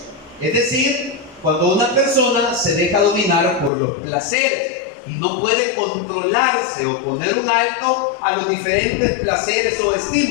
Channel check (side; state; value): right; drops out; at 3.7 s